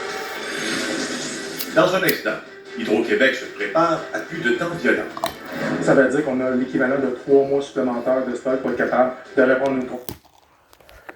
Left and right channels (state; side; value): identical; both; correlation 1.00